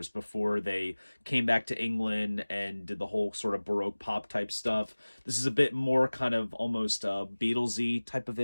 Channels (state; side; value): inverted; both; correlation -1.00